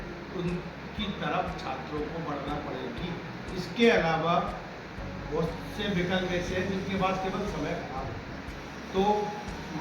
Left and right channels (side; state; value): both; identical; correlation 1.00